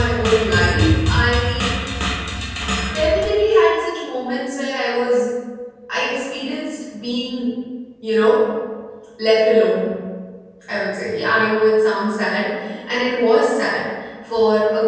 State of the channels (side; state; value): both; identical; correlation 1.00